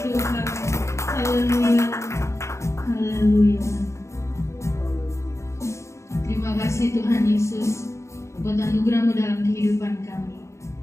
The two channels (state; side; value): late; right; 0.14 ms